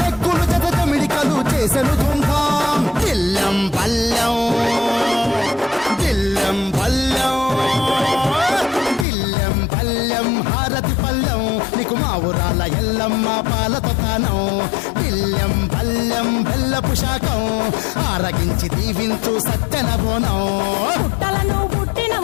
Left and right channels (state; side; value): drops out; right; at 9.1 s